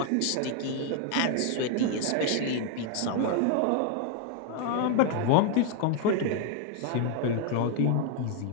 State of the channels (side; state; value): both; different; correlation 0.00